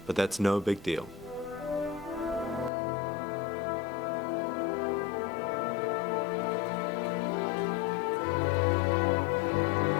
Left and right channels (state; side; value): drops out; right; at 2.7 s